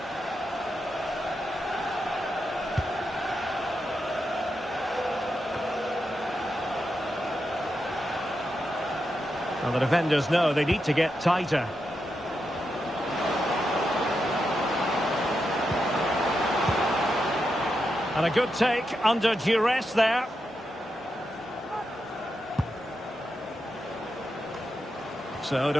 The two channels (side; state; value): both; normal; correlation 0.86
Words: Well, the defenders know they need to get tighter. And a good take under duress there. So